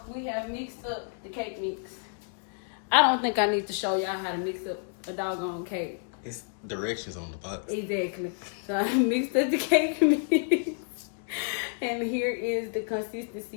we have mixed up the cake mix. I don't think I need to show y'all how to mix up a doggone cake. It's directions on the box. Exactly. So I mixed up the cake mix. And here is the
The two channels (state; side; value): silent; right; 58 dB below the other